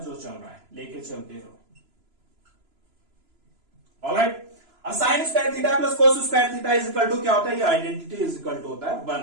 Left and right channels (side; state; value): left; late; 3.0 ms